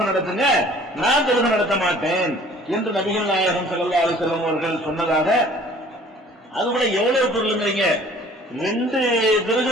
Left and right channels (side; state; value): both; normal; correlation 0.52